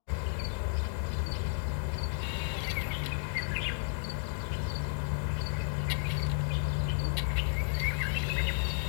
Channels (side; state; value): right; silent; digital silence